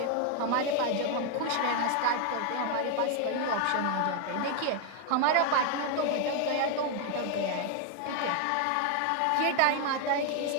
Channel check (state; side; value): different; both; correlation 0.00